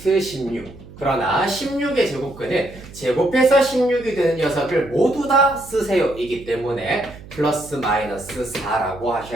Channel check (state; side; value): noise; right; hum, 18 dB below the sound